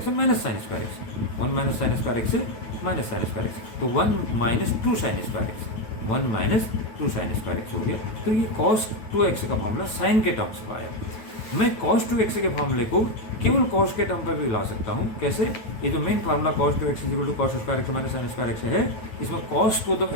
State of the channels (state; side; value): late; right; 9.2 ms